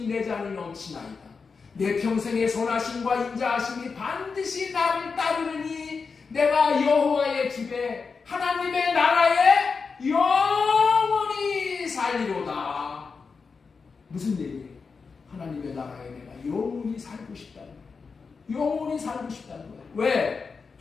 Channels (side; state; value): right; quieter; 5.0 dB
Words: 내 잔이 넘치나이다. 내 평생의 선하심과 인자하심이 반드시 나를 따르느니 내가 여호와의 집에 하나님의 나라에 영원히 살리로다. 무슨 얘기예요? 하나님의 나라에 내가 영원히 살고 싶다는 거예요. 영원히 살고 싶다는 거예요. 왜?